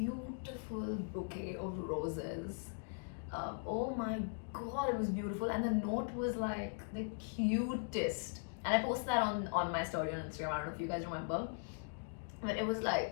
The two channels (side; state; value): right; silent; digital silence